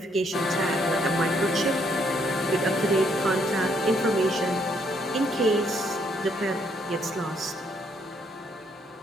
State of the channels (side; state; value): both; normal; correlation 0.70